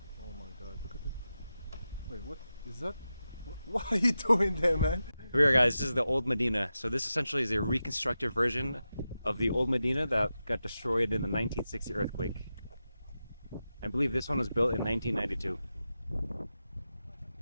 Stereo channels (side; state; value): both; inverted; correlation -0.91